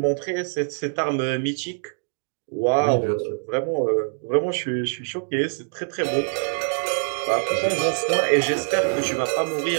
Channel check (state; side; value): silent; left; digital silence